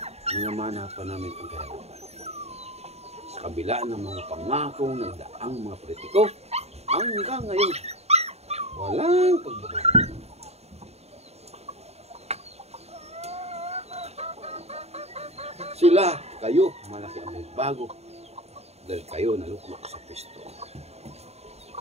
minamana pa namin ang kahirapan. Sa kabila ng mga pangakong nagdaang mga politiko, hanggang ngayon, walang pagbabago. Sila, kayo, malaki ang may bago dahil kayo naluklok sa pisto.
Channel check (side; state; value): left; late; 0.31 ms